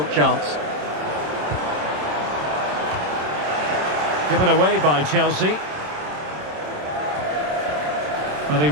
chance. Given away by Chelsea. Well, he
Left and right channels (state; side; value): late; left; 27 ms